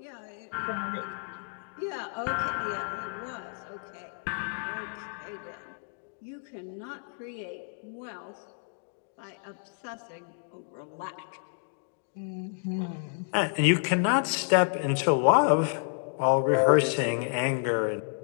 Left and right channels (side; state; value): right; silent; 58 dB below the other